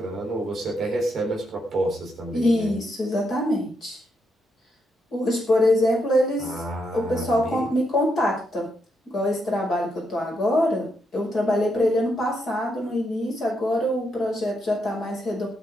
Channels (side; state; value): both; normal; correlation 0.80